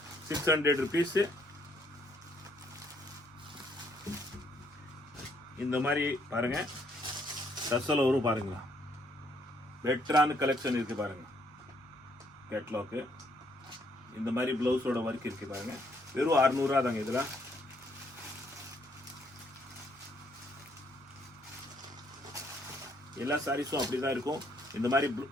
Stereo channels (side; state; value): both; normal; correlation 0.69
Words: ₹600. இந்த மாதிரி பாருங்க. டசல் வரும் பாருங்களா. பெட்டரான கலெக்ஷன் இருக்கு பாருங்க. கேட்லாக் இந்த மாதிரி பிளவுஸோட ஒர்க் இருக்கு பாருங்க. வெறும் 600 தாங்க. இதுல எல்லா சாரீஸும் அப்படிதான் இருக்கும். இந்த மாதிரி